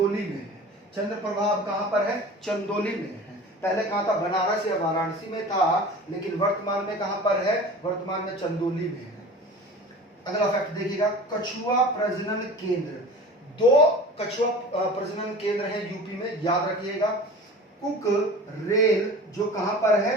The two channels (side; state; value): both; normal; correlation 0.38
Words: में है। चंद्रप्रभा अब कहां पर है? चंदौली में है। पहले कहां था? बनारस या वाराणसी में था, लेकिन वर्तमान में कहां पर है? वर्तमान में चंदौली में है। अगला फैक्ट देखिएगा, कछुआ प्रजनन केंद्र। 2 कछुआ प्रजनन केंद्र है यूपी में, याद रखिएगा। कुक रेल जो कहां पर है?